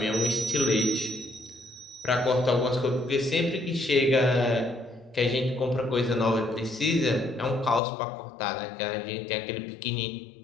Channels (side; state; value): right; drops out; at 7.8 s